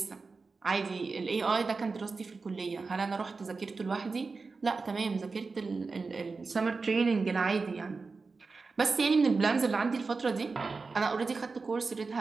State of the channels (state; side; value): quieter; left; 4.2 dB